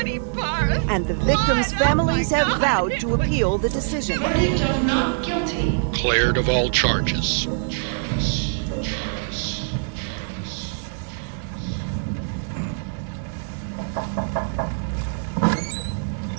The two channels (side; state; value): left; silent; 63 dB below the other